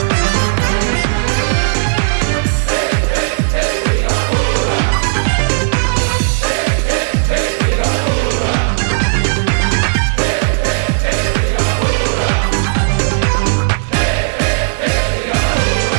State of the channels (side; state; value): left; silent; digital silence